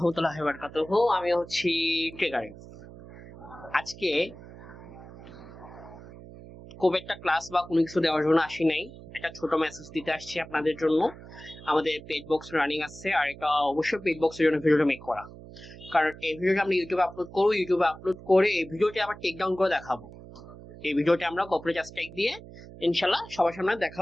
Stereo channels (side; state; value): right; noise; hum, 17 dB below the sound